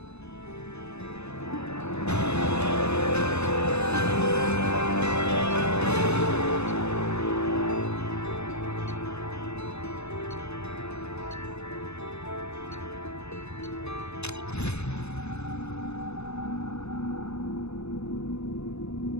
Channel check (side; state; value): right; late; 0.80 ms